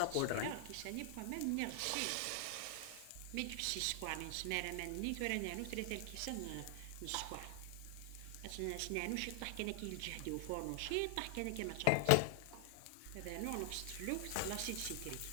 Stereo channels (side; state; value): both; different; correlation 0.00